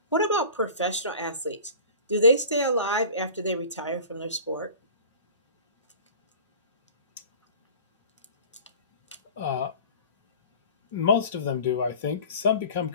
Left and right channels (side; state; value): both; inverted; correlation -0.41